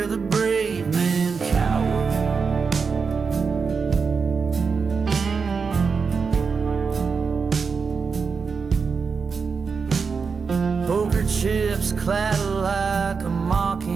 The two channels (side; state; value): left; quieter; 5.3 dB